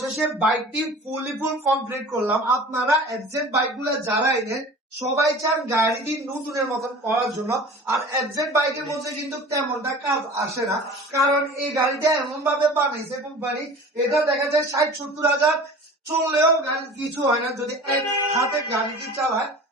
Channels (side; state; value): both; normal; correlation 0.40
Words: বাইকটি ফুল কমপ্লিট করলাম। আপনারা এফজেড বাইক গুলা যারা এনেন সবাই চান গাড়িটি নতুনের মতন করার জন্য। আর এফজেড বাইকের মধ্যে কিন্তু তেমনটা কাজ আসে না, কারণ এই গাড়িটা এমন ভাবে বানাইছে কোম্পানি, এটা দেখা যায় 60-70 হাজার চললেও গাড়ি কিছু হয় না যদি এক হাতে গাড়িটি চালায়।